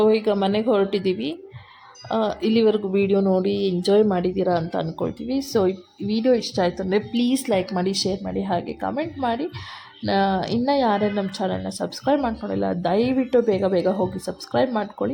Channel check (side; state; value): both; identical; correlation 1.00